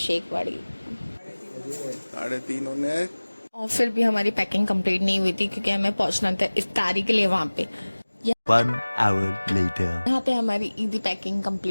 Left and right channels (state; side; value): inverted; both; correlation -1.00